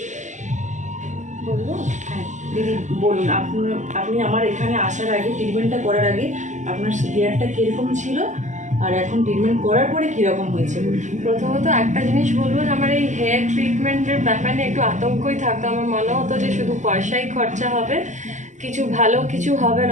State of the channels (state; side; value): late; left; 0.35 ms